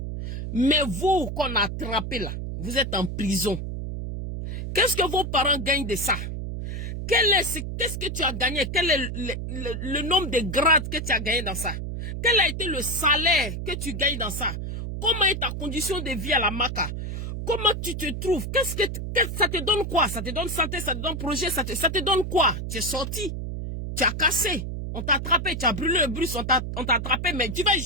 Mais vous qu'on a attrapé là, vous êtes en prison. Qu'est-ce que vos parents gagnent de ça? Qu'est-ce que tu as gagné? Quel est le nombre de grades que tu as gagné dans ça? Quel a été le salaire que tu gagnes dans ça? Comment est ta condition de vie à la Maca? Comment tu te trouves? Ça te donne quoi? Ça te donne santé, ça te donne projet, ça te donne quoi? Tu es sorti, tu as cassé, on t'a attrapé, tu as brûlé le bus, on t'a attrapé, mais tu vas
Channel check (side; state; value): right; noise; hum, 5 dB below the sound